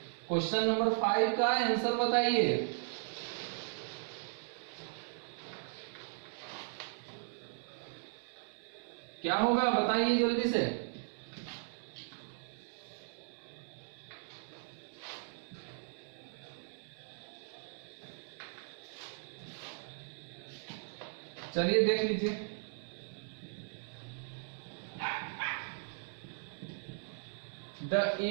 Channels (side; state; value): left; silent; 53 dB below the other